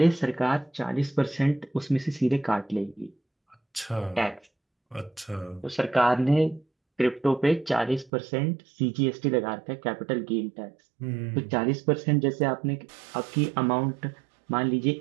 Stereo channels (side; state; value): left; drops out; at 8.1 s